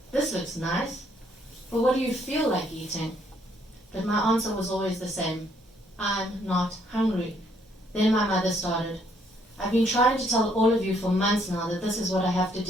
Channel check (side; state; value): both; normal; correlation 0.68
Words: This looks nice. But what do you feel like eating? But my answer was always the same. I'm not hungry. Then my mother started. I've been trying to tell all of you for months now that this is what I have to